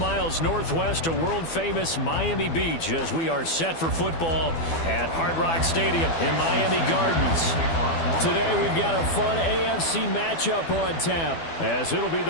northwest of world-famous Miami Beach as we are set for football at Hard Rock Stadium in Miami Gardens. Today we've got a fun AFC matchup on tap as it'll be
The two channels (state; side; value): late; right; 12 ms